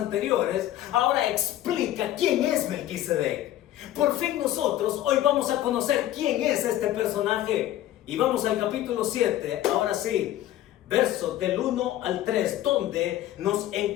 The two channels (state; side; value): quieter; right; 13.4 dB